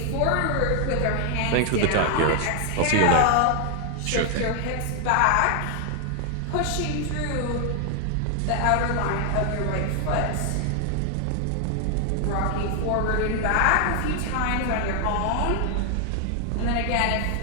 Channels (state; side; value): different; both; correlation 0.00